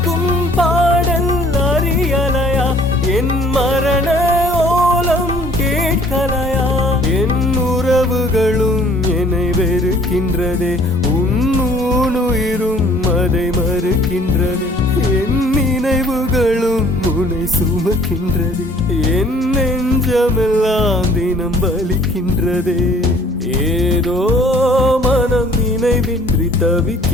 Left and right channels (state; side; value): normal; both; correlation 0.55